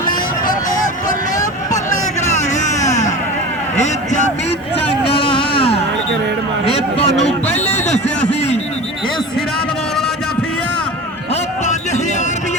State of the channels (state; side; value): normal; both; correlation 0.33